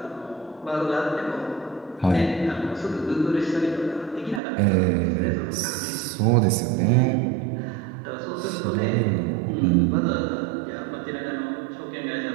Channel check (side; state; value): left; drops out; at 4.4 s